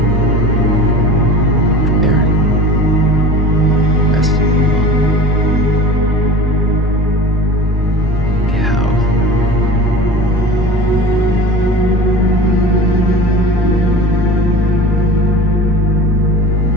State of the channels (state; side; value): normal; both; correlation 0.37